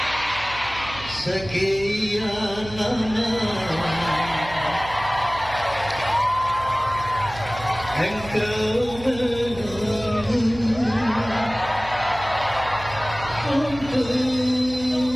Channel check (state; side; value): noise; right; hum, 14 dB below the sound